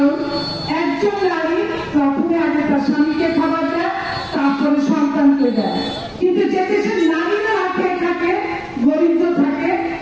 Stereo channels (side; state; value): both; identical; correlation 1.00